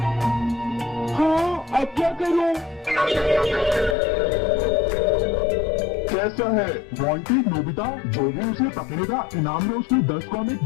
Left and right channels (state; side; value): drops out; right; at 4.0 s